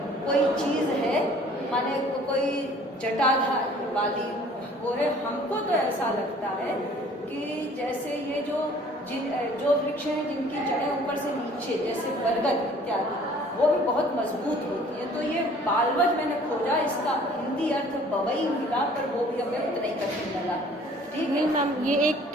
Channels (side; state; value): both; normal; correlation 0.53